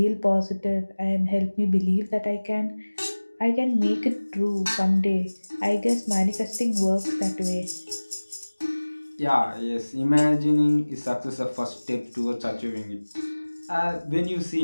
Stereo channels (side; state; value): both; inverted; correlation -1.00